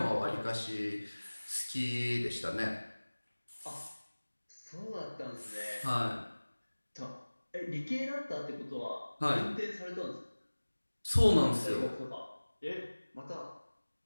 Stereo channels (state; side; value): inverted; both; correlation -1.00